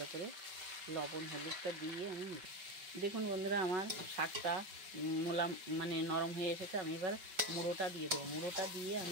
করে লবণ হলুদটা দিয়ে আমি দেখুন বন্ধুরা, আমার শাকটা মানে নরম হয়ে এসেছে। আমি এবার মুড়োটা দিয়ে দেবো। মুড়োটা দিয়ে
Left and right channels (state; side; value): late; left; 5.4 ms